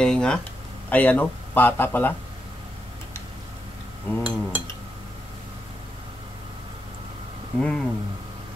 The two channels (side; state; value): both; normal; correlation 0.84